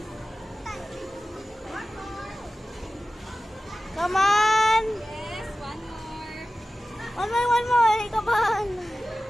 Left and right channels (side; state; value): both; normal; correlation 0.95